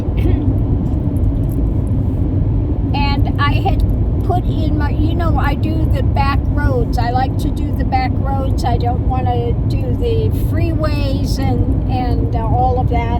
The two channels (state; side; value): identical; both; correlation 1.00